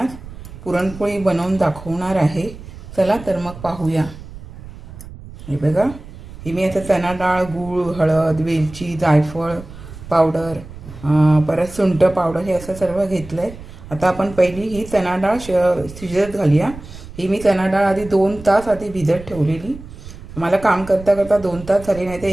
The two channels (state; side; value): noise; right; rumble, 15 dB below the sound